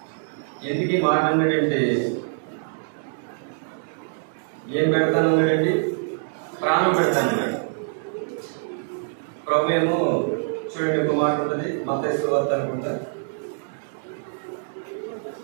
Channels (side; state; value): left; silent; digital silence